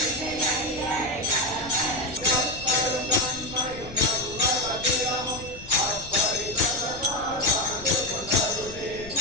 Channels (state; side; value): noise; left; rumble, 16 dB below the sound